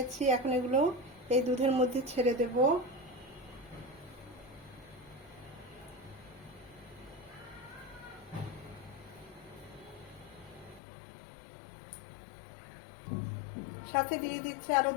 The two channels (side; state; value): right; drops out; at 10.8 s